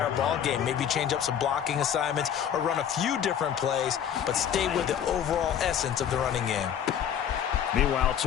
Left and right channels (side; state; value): right; quieter; 9.1 dB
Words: ball game. Maybe change up some blocking assignments or run a few different plays, but stay with the overall essence of the running game. Meanwhile,